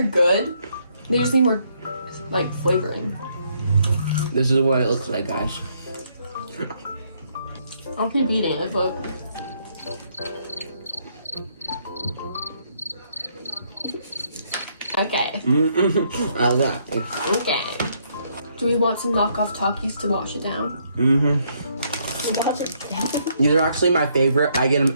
good. They just need more like flavoring. This is what it looks like, guys. I'll keep eating it, but okay. Okay. Do we want some knockoff Takis to wash it down? Wash it down. These are actually my favorite. I get them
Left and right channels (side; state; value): both; inverted; correlation -0.71